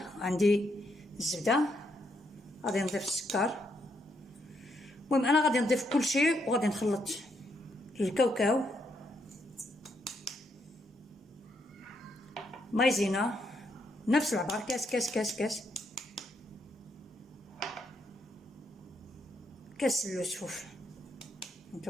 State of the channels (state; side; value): normal; both; correlation 0.77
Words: عندي الزبده، غادي نضيف السكر. المهم انا غادي نضيف كل شيء وغادي نخلط الكاوكاو، مايزينا نفس العبار، كاس كاس كاس كاس كاس السفوف.